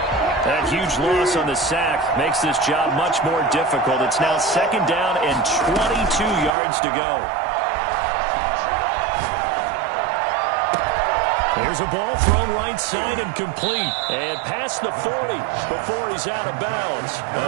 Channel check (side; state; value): left; drops out; at 6.6 s